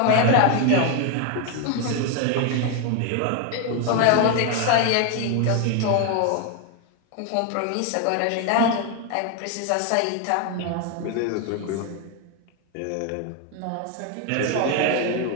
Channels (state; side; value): different; both; correlation 0.01